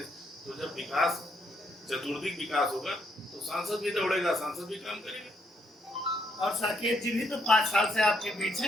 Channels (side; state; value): both; normal; correlation 0.73